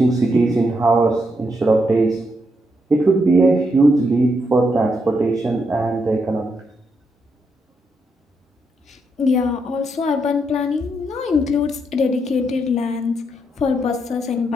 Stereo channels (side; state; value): both; normal; correlation 0.79